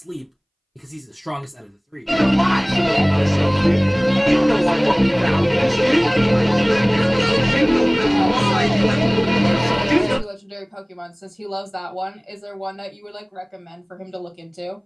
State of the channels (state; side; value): identical; both; correlation 1.00